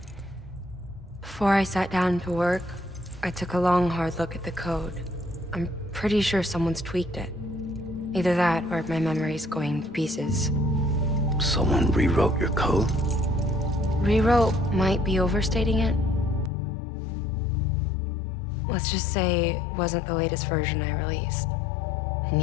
Before I sat down to work, I took a long, hard look at the code. I'm pretty sure someone's tweaked it. Either that, or my memory's going to pieces. Someone rewrote your code? Rewrote might be overstating it. Let's just say it wasn't the latest version I released. And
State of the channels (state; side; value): drops out; right; at 16.5 s